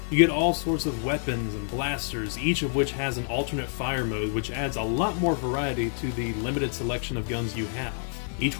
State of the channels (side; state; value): right; silent; digital silence